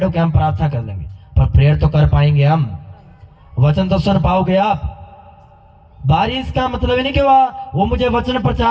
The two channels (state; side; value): identical; both; correlation 1.00